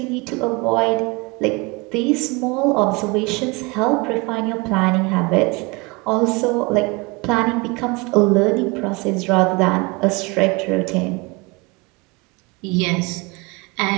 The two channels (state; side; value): quieter; left; 26.6 dB